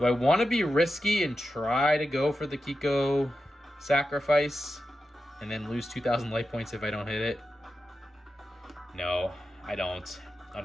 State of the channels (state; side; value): normal; both; correlation 0.90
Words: I want to be risky and try to go for the Kiko sacrifice and then lose 2,000 life points if I don't hit it? No, I don't,